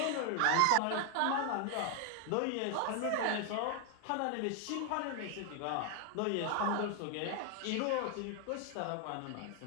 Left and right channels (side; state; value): both; different; correlation 0.00